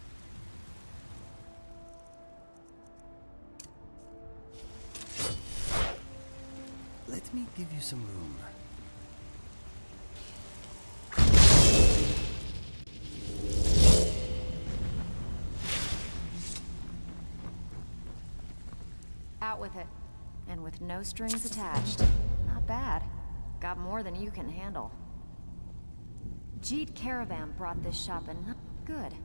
Let me give you some room. Out with it. And with no strings attached. Not bad. Got more than you can handle. Jeet Caravan brought this shop in. Good.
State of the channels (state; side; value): inverted; both; correlation -1.00